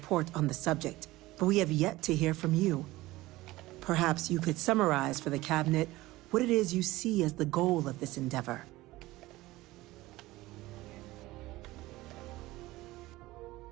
on the subject, but we have yet to hear from you. Perhaps you could summarize for the Cabinet what it is you see as the goal of this endeavor.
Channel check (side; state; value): left; quieter; 18.5 dB